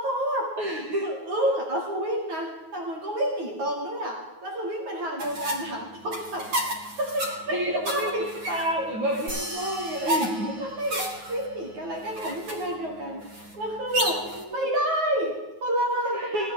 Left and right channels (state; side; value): late; left; 9.4 ms